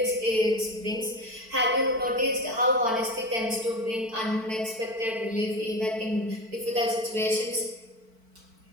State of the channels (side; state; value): left; late; 4.5 ms